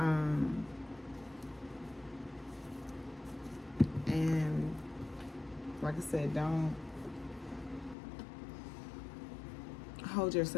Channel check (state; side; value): drops out; right; at 8.0 s